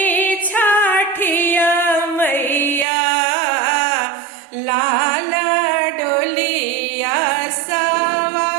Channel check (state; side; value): drops out; left; at 2.9 s